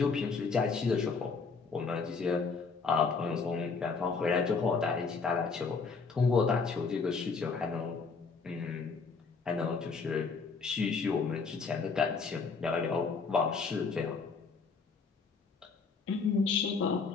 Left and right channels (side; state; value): right; quieter; 4.9 dB